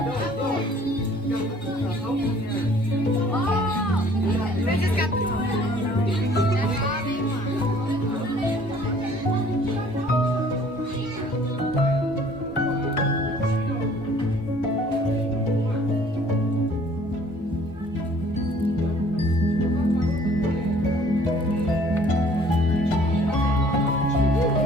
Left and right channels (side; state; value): both; normal; correlation 0.55